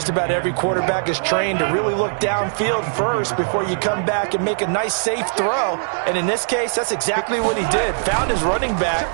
about every quarterback is trained to really look downfield first before you come back and make a nice, safe throw. And in this case, that's exactly what he did. Found his running back,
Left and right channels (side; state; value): left; silent; digital silence